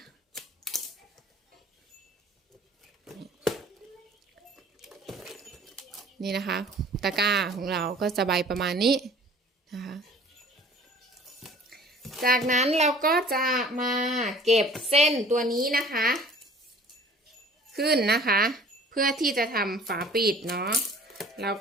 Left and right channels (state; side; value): normal; both; correlation 0.49